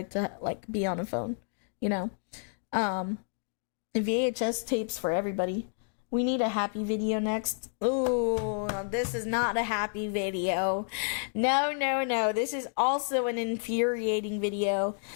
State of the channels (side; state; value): right; silent; 58 dB below the other